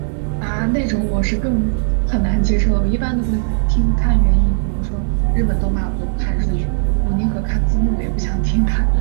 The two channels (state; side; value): silent; left; digital silence